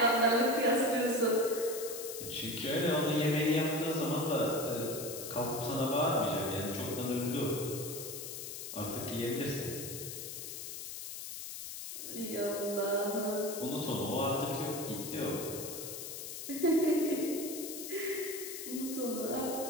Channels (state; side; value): noise; left; hiss, 8 dB below the sound